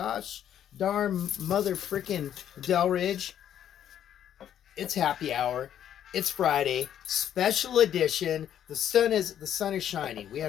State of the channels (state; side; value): quieter; right; 10.2 dB